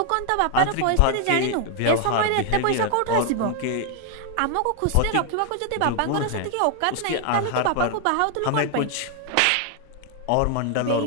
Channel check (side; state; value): both; different; correlation 0.00